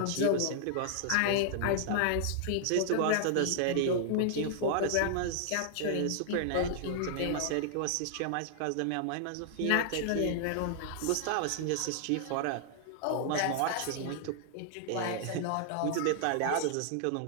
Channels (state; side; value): different; both; correlation -0.01